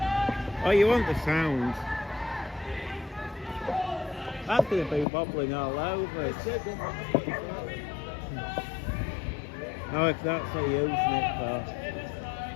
Oh, you want the sound? That's going to be wobbling all over. Oh, if that's what you're using it for.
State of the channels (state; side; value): drops out; right; at 5.1 s